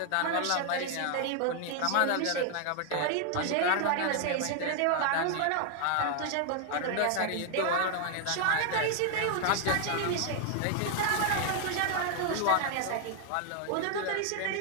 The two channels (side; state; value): both; different; correlation 0.00